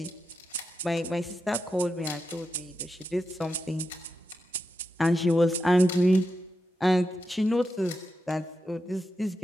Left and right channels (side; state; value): both; normal; correlation 0.88